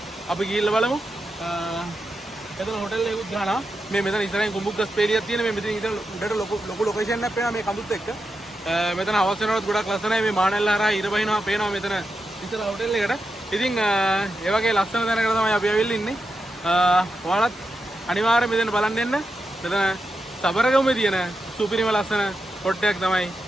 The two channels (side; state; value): both; normal; correlation 0.88